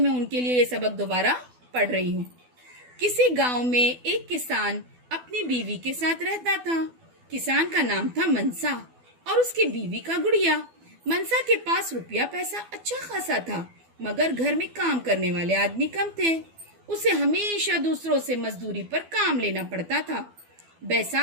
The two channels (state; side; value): late; left; 12 ms